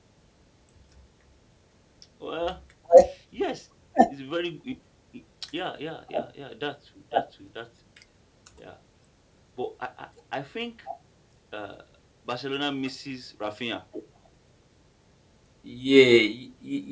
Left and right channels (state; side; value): identical; both; correlation 1.00